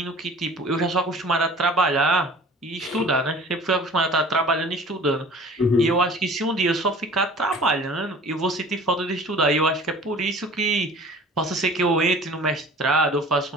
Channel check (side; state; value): both; normal; correlation 0.45